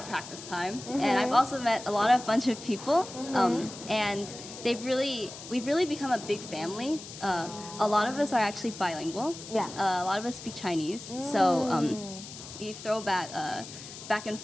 practice time, and I've also met a bunch of people, and we've really become a big family. A lot of us are actually bilingual. Yeah. A lot of us speak Chinese, so we throw back and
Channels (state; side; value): noise; left; hiss, 13 dB below the sound